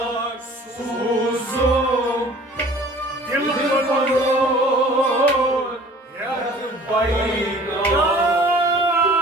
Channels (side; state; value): both; normal; correlation 0.49